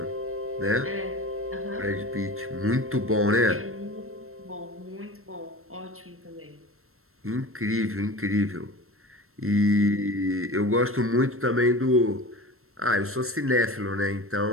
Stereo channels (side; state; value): left; late; 0.62 ms